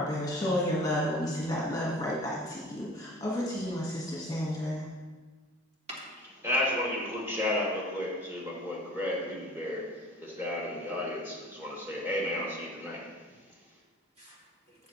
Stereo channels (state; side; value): normal; both; correlation 0.45